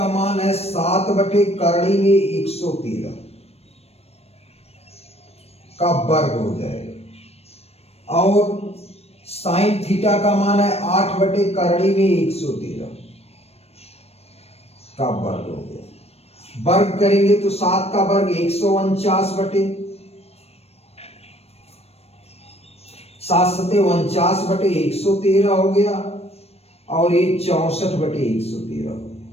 मान है 7 बटे करणी में 113 का वर्ग हो जाएगा, और साइन थीटा का मान है 8 बटे करणी में 113 का वर्ग हो गया। वर्ग करेंगे तो 7 का वर्ग 149 बटे 7 सते 49 बटे 113 हो गया, और ये 64 बटे 113,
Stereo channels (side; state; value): right; late; 0.30 ms